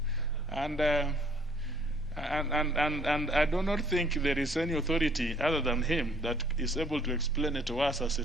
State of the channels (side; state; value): both; normal; correlation 0.61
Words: And I do not think there is any authority other than him that is able to explain it to us as